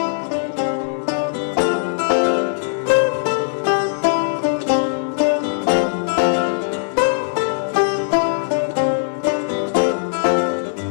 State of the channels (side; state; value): right; silent; digital silence